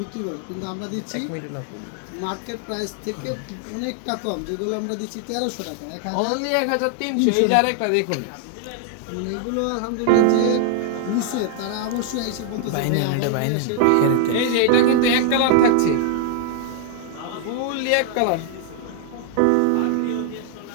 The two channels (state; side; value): different; both; correlation 0.00